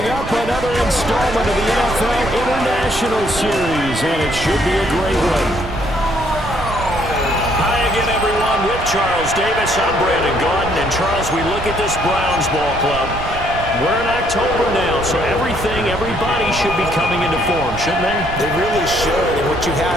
up, another installment of the NFL International Series, and it should be a great one. Hi again, everyone. With Charles Davis, I'm Brandon Gaudin. And Charles, we look at this Browns ball club. We're in October now, so everybody should be coming into form, shouldn't they? They really should, and what you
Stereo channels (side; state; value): right; noise; rumble, 9 dB below the sound